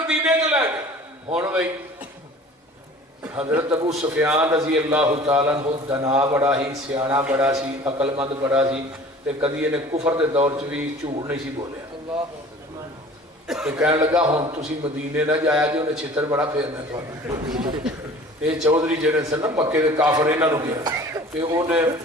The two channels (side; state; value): both; normal; correlation 0.45